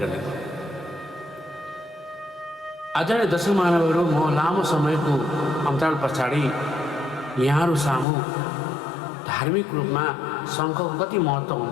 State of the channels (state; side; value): drops out; right; at 8.1 s